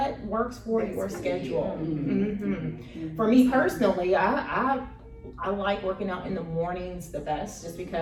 works for your schedule. For me personally, I like working out in the mornings the best, just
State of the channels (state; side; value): identical; both; correlation 1.00